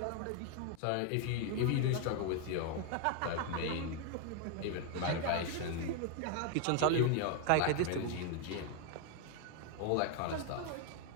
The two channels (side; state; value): both; different; correlation 0.01